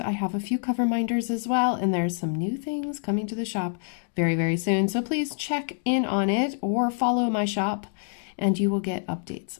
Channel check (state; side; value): silent; right; 58 dB below the other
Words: have a few cover minders as well, and there's some new things coming to the shop very, very soon, so please check in on it or follow my shop and you will get updates.